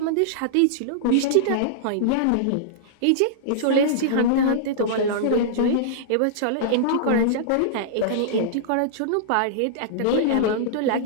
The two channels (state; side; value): different; both; correlation -0.02